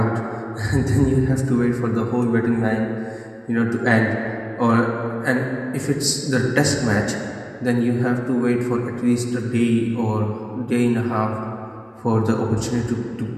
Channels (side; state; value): both; identical; correlation 1.00